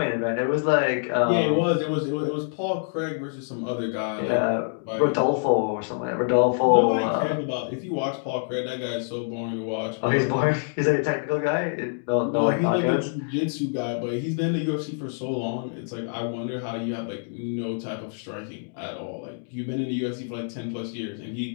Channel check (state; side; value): silent; right; digital silence